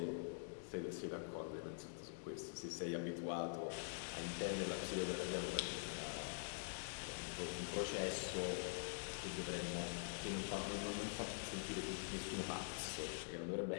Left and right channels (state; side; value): silent; right; digital silence